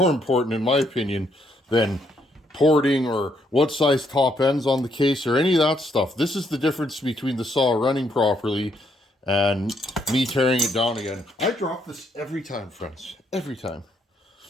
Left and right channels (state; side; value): normal; both; correlation 0.73